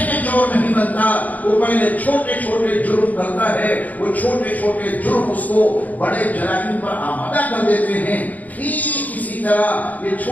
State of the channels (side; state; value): right; late; 0.078 ms